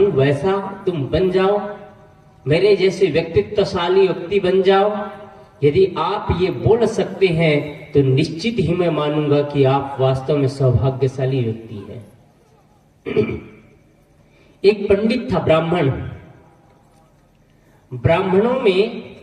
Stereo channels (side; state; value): both; identical; correlation 1.00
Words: वैसा तुम बन जाओ, मेरे जैसे व्यक्तित्वशाली व्यक्ति बन जाओ? यदि आप ये बोल सकते हैं तो निश्चित ही मैं मानूंगा कि आप वास्तव में सौभाग्यशाली व्यक्ति हैं। एक पंडित था, ब्राह्मण। ब्राह्मणों में